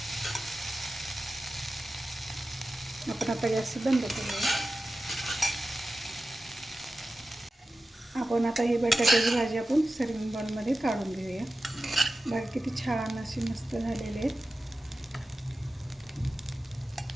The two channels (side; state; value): both; normal; correlation 0.94